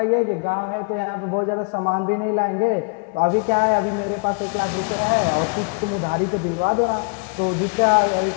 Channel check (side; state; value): right; quieter; 34.7 dB